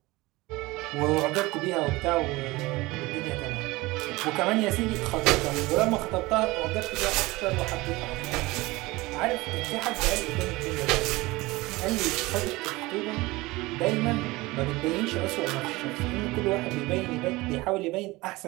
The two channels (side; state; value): left; quieter; 21.1 dB